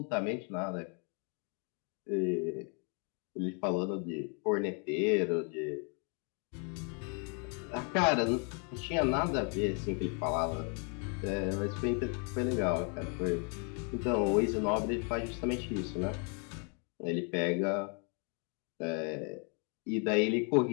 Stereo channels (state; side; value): quieter; right; 38.3 dB